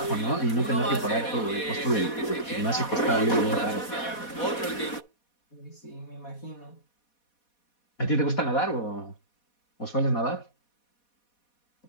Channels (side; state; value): right; late; 4.2 ms